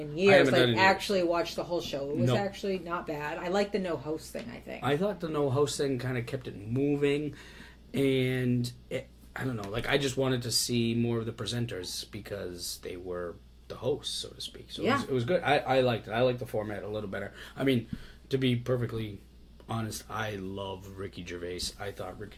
years. haven't done it in years. Actually watch the whole show. It was No. actually not bad. I like the no host thing, I think. I thought the no host thing kind of kept it moving, and I don't know. Like, I just wanted to see more of the presenters because they were the hosts, so to speak. So Yeah. it was good. I liked it. I liked the format a little better. I mean, to be perfectly honest, I love Ricky Gervais. I thought Ricky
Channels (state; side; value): identical; both; correlation 1.00